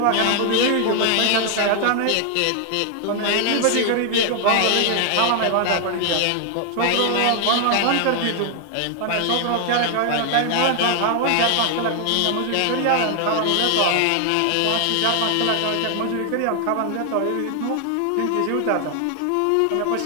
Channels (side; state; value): both; different; correlation 0.00